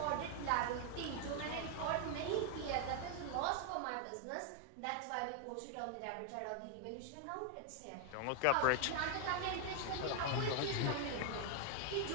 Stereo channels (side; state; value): both; different; correlation 0.00